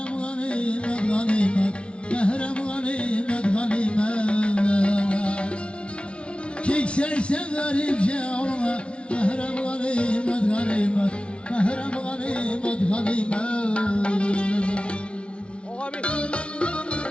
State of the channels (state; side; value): late; right; 0.059 ms